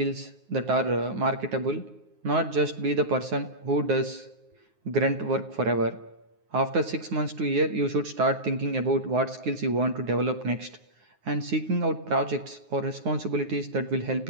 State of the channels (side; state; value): left; late; 9.5 ms